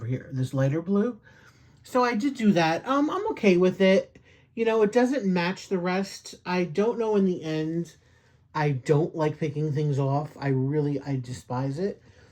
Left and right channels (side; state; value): both; identical; correlation 1.00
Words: here, this lighter blue. So I did do that. I'm okay with it. You know, it doesn't match the rest. I don't know in the end. I don't like picking things off. I despise it.